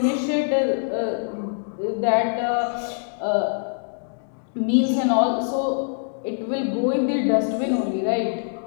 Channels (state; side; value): silent; right; digital silence